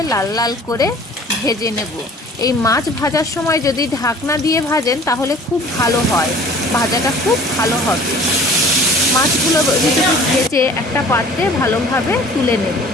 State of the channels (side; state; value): both; normal; correlation 0.48